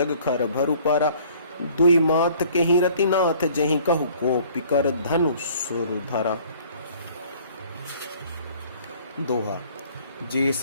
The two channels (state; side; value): inverted; both; correlation -0.55